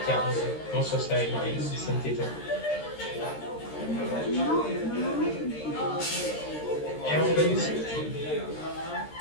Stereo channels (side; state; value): right; late; 13 ms